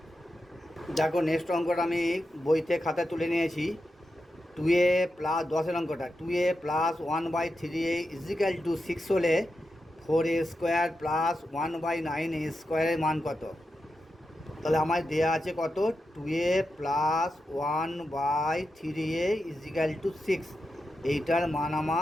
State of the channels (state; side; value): normal; both; correlation 0.88